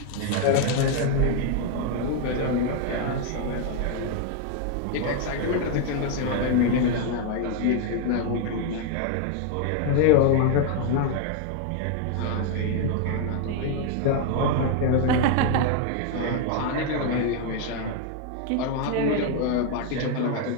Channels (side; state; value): both; different; correlation 0.00